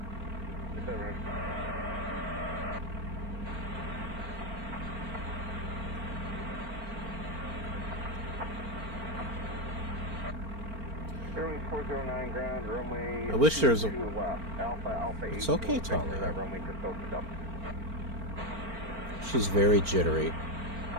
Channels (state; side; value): late; left; 4.4 ms